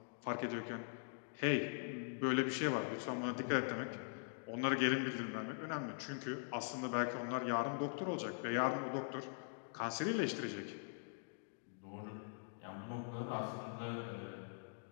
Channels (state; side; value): silent; right; digital silence